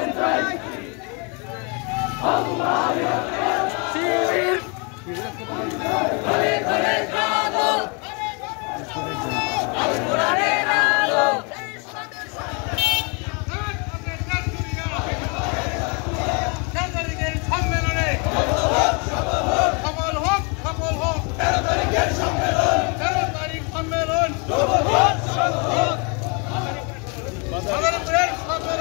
চাই, আল্লাহর শিবির ঘরে ঘরে জাগো, আল কোরআনের আলো, সম্মেলনে সফল হোক, সফল হোক 13 তারিখের সম্মেলন, 13 তারিখ সম্মেলন সফল হোক, সফল হোক ভাগলপুরের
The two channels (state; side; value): quieter; right; 33.5 dB